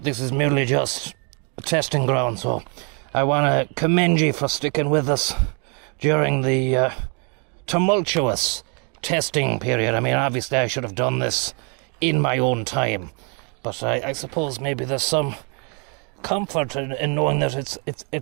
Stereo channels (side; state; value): left; quieter; 37.1 dB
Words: This is merely just a testing ground, so I want to commend you for sticking with us during the tumultuous testing period. I mean, obviously I should have done this in my own time, but I suppose maybe there's some comfort in knowing that